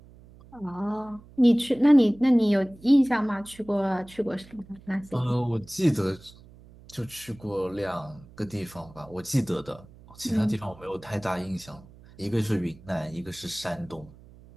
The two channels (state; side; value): noise; right; hum, 22 dB below the sound